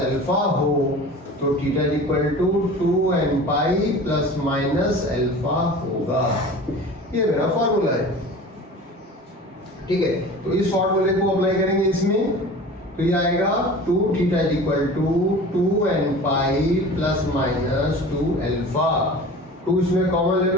alpha हो तो theta is equal to 2n pi plus minus alpha होगा। ये मेरा फॉर्मूला है, ठीक है। तो इस फॉर्मूले को अप्लाई करेंगे इसमें, तो ये आएगा 2 theta is equal to 2n pi plus minus 2 alpha. 2 इसमें कॉमन ले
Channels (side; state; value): both; normal; correlation 0.38